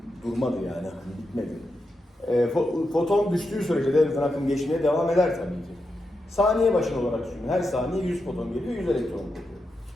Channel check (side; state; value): both; normal; correlation 0.87